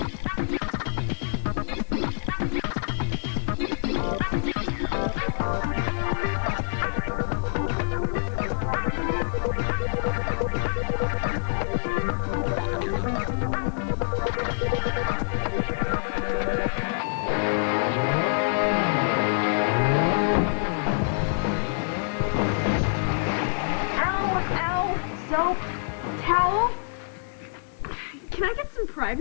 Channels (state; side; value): silent; right; digital silence